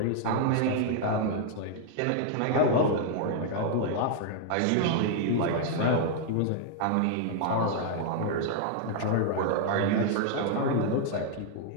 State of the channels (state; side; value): different; both; correlation -0.01